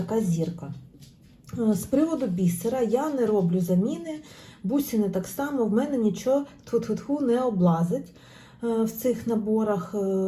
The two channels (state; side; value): identical; both; correlation 1.00